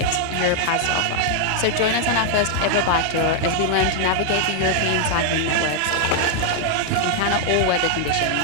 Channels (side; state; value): both; different; correlation 0.00